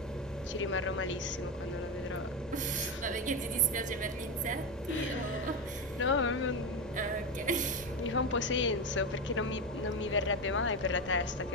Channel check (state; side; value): normal; both; correlation 0.15